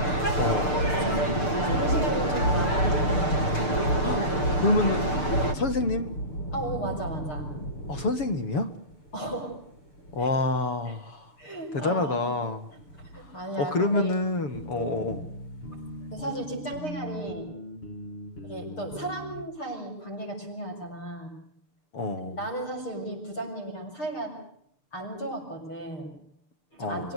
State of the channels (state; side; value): late; right; 6.7 ms